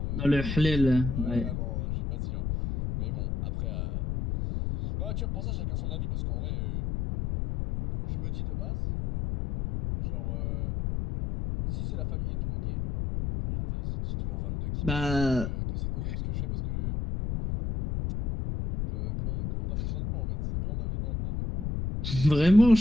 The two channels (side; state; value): left; noise; rumble, 3 dB below the sound